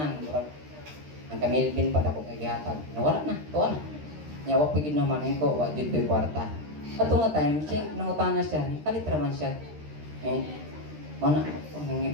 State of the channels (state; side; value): late; left; 13 ms